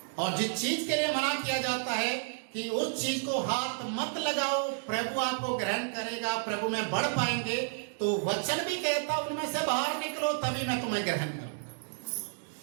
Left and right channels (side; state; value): left; silent; digital silence